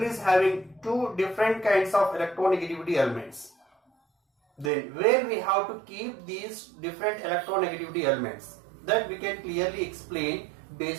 is having two different kinds of electronegativity elements, then where we have to keep these different electronegativity elements, that we can clearly explain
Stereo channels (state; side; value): drops out; left; at 4.7 s